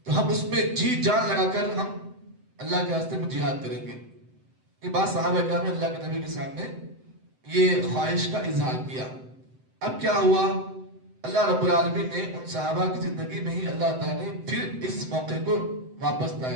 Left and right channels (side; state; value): left; late; 7.8 ms